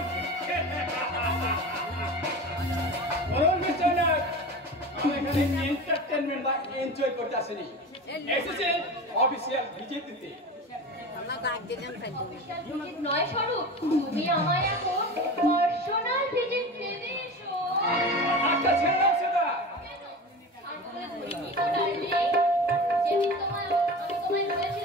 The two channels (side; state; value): both; normal; correlation 0.31